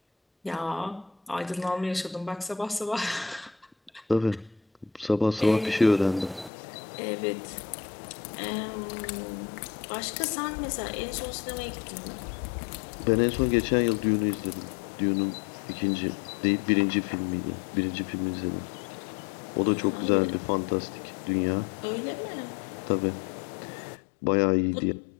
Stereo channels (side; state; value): right; drops out; at 6.5 s